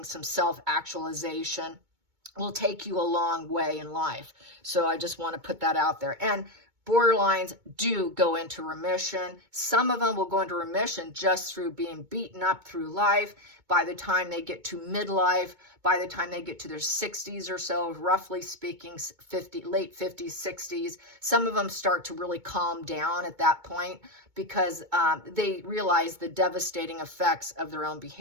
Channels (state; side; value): late; left; 2.2 ms